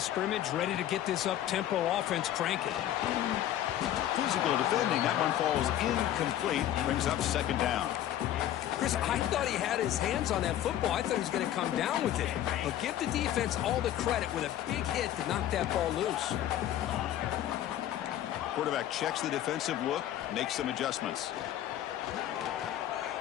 scrimmage, ready to get this up-tempo offense cranking. Physical defending. That one falls incomplete. Brings up 2nd down. Chris, I thought he had his hands on that football. I thought he was going to come down with it. But give the defense all the credit with a big hit to knock that ball loose. Quarterback checks the defensive look, makes some adjustments.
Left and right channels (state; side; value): quieter; right; 12.1 dB